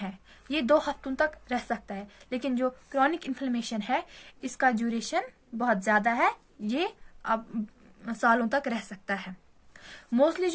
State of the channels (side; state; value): both; identical; correlation 1.00